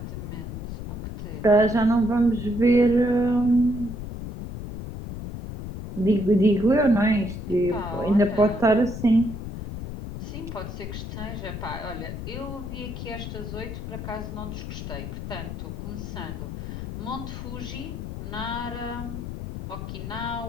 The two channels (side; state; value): left; noise; rumble, 7 dB below the sound